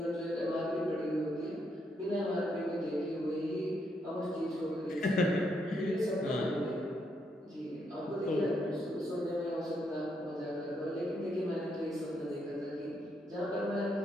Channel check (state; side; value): normal; both; correlation 0.77